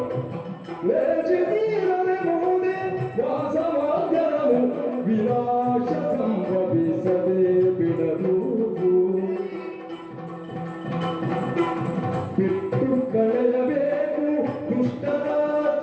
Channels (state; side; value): identical; both; correlation 1.00